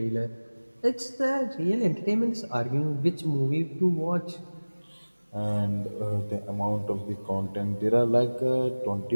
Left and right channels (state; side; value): inverted; both; correlation -1.00